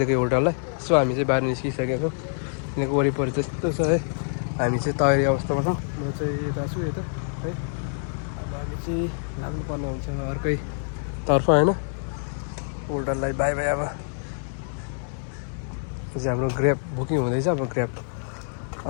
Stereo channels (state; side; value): silent; right; digital silence